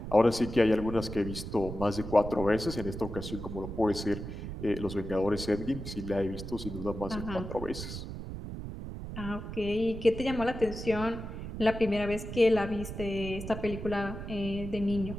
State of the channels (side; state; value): right; noise; rumble, 8 dB below the sound